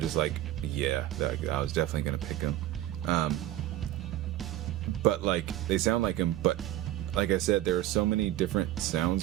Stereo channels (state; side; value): quieter; left; 14.2 dB